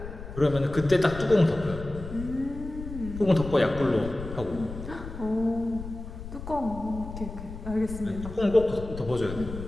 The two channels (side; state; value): left; noise; rumble, 10 dB below the sound